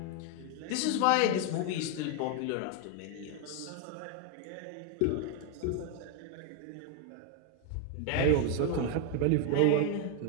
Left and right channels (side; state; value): both; different; correlation 0.00